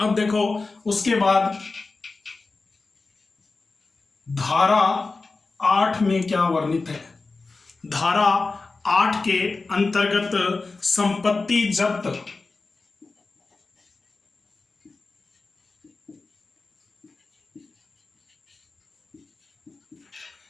देखो उसके बाद धारा 8 में क्या वर्णित है। धारा 8 के अंतर्गत संपत्ति जब्त,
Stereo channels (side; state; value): right; quieter; 3.8 dB